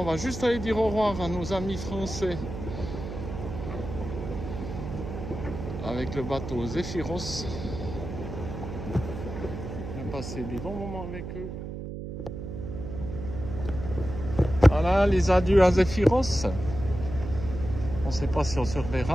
on va juste aller dire au revoir à nos amis français avec le bateau Zéphiros. On a passé des bons moments avec eux. Voilà les adieux à Zéphiros. On ne sait pas si on se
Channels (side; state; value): right; noise; hum, 8 dB below the sound